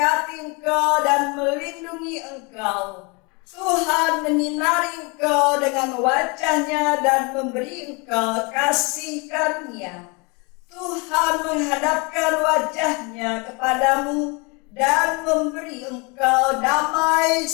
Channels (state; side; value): quieter; right; 29.9 dB